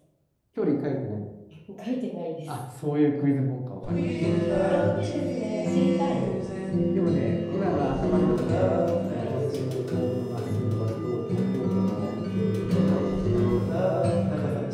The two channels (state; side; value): identical; both; correlation 1.00